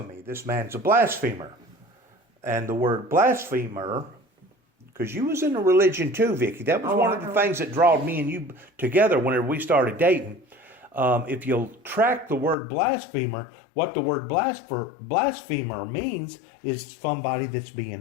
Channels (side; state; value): right; drops out; at 12.6 s